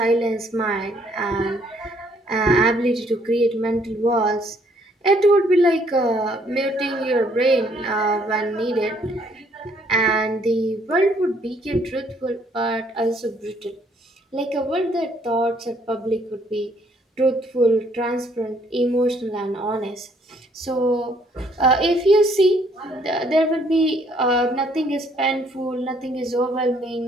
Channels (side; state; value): both; normal; correlation 0.66